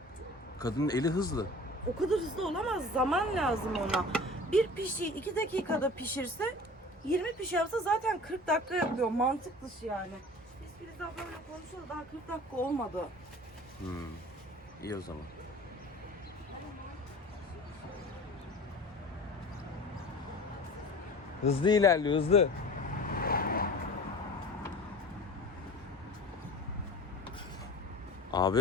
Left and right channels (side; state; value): both; normal; correlation 0.40